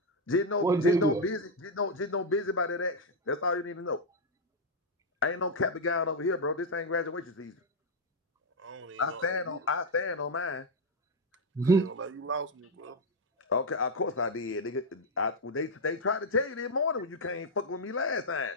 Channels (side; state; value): both; normal; correlation 0.01